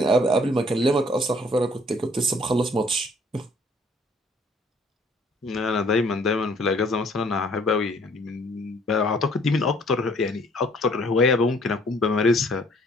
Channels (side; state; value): both; normal; correlation 0.60